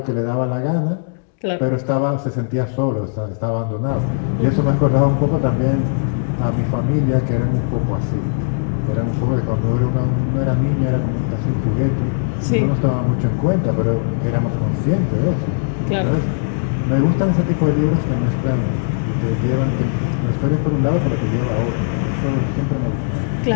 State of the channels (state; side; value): silent; right; digital silence